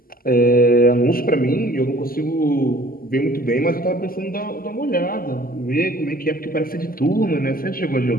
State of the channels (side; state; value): right; late; 0.42 ms